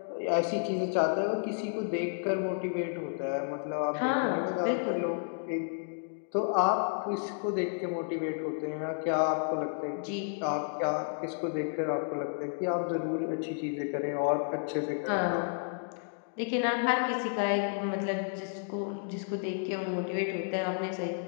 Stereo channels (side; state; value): right; silent; digital silence